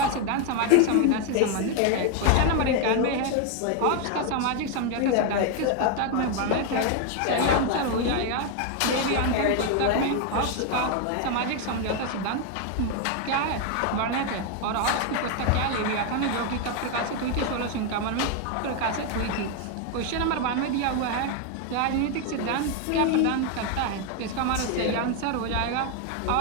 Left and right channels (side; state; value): both; different; correlation 0.01